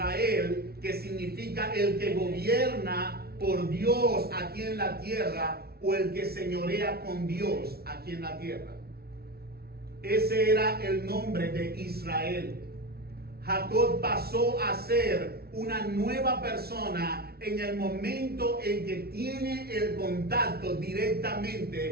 que significa el que gobierna por Dios aquí en la tierra, o el que señorea con Dios aquí en la tierra. Ese era el nombre de Israel. Jacob pasó a ser una nueva persona en el momento en que tiene el contacto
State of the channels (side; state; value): left; late; 0.45 ms